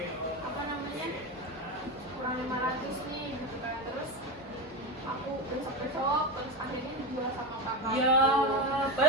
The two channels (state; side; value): normal; both; correlation 0.18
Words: apa namanya kurang 500 nih gitu kan. Terus aku besok terus akhirnya dijual sama kakak. Ya,